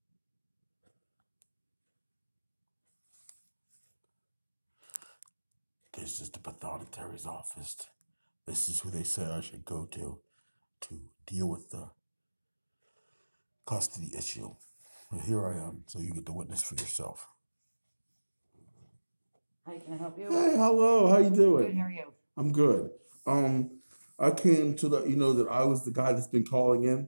This is the pathonetary's office. This is who they say I should go to deal with the custody issue. But here I am, so you get to witness for yourself. Hi, can I help you? Hey, hello. How you doing? Good, how are you? I'm good. I came to let you know that I was the guy that's been calling in.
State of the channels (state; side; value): inverted; both; correlation -1.00